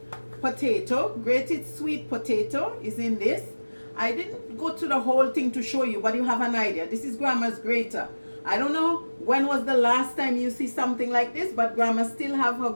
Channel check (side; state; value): both; inverted; correlation -1.00